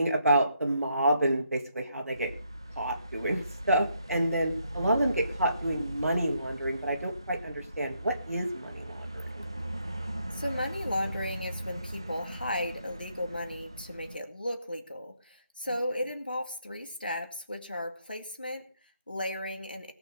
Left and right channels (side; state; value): both; inverted; correlation -0.75